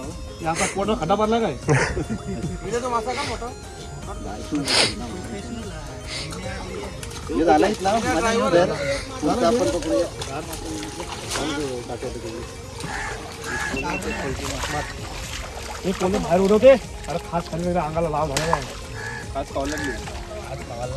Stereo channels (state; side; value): identical; both; correlation 1.00